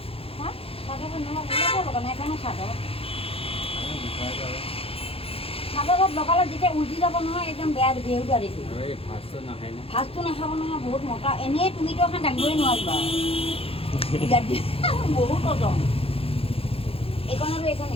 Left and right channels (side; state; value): right; late; 0.27 ms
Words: চাদৰত লগালে যেতিয়া উলটি যাব নহয় একদম বেয়া বেহুদা দেখি ফাৰ্ষ্টটো নাখাব নহয় বহুত মতা এনেই তুমিতো এখন দাঙিবই নোৱাৰিবা বহুত ওজন এইখন আৰু এইখন